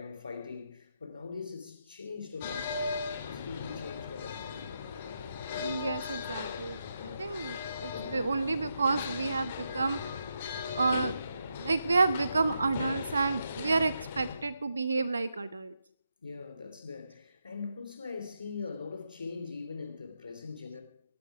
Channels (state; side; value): inverted; both; correlation -0.83